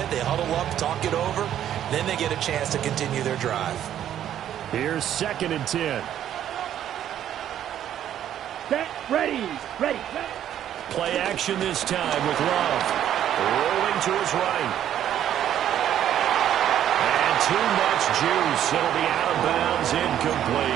They huddle up, talk it over. Then they get a chance to continue their drive. Here's 2nd and 10. Set, ready. Play action this time with Love. Rolling to his right. And too much juice. It'll be out of bounds,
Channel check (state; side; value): quieter; left; 10.8 dB